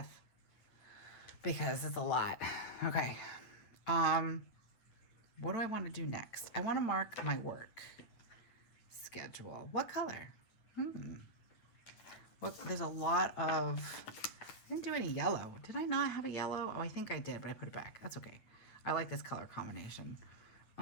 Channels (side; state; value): right; late; 9.3 ms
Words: because it's a lot. Okay. What do I want to do next? I want to mark my work. schedule. What color? What, there's a lot of, I didn't do any yellow. Did I not have a yellow? Oh, I think I did, but I put it back. That's okay. I like this color combination.